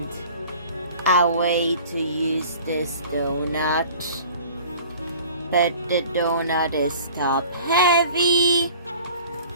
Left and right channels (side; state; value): both; inverted; correlation -0.46